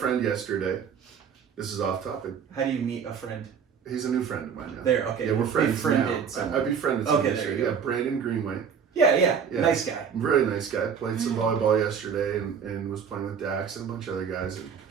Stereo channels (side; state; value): left; quieter; 7.0 dB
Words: yesterday. This is off topic. How do you meet a friend? He's a new friend of mine now. There, okay. Yeah, we're friends Befriended now. someone. I befriended Okay, someone there you yesterday. go. Yeah, Brandon Greenway. Yeah, Yeah. nice guy. Really nice guy. Played some Mm-hmm. volleyball yesterday and was playing with Dax and a bunch of other guys. And